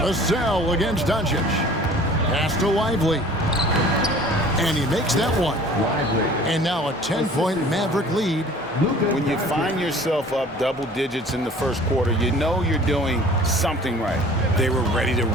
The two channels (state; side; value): normal; both; correlation 0.48